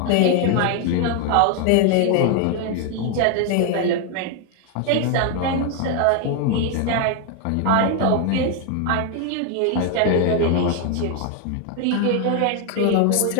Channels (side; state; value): both; different; correlation 0.01